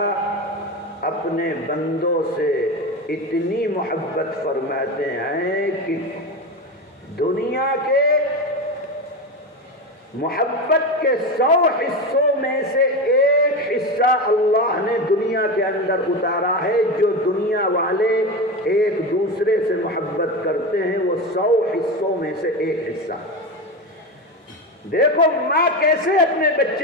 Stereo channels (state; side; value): normal; both; correlation 0.20